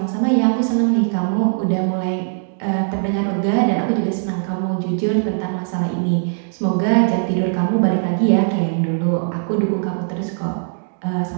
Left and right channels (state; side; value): silent; left; 66 dB below the other